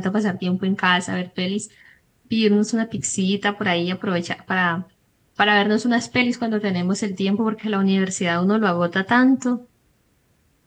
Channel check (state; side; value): identical; both; correlation 1.00